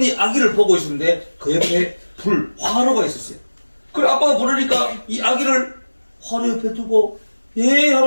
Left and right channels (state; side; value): inverted; both; correlation -1.00